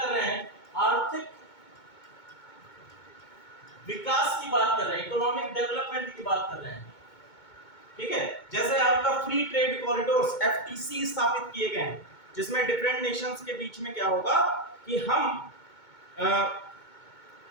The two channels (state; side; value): late; right; 2.2 ms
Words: रहे हैं, आर्थिक विकास की बात कर रहे हैं, इकोनॉमिक डेवलपमेंट की बात कर रहे हैं। ठीक है, जैसे आपका फ्री ट्रेड कॉरिडोर्स एफटीसी स्थापित किए गए हैं, जिसमें डिफरेंट नेशंस के बीच में क्या होगा कि हम